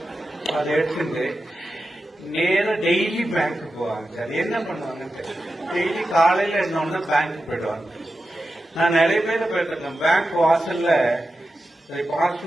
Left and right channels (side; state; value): both; normal; correlation 0.91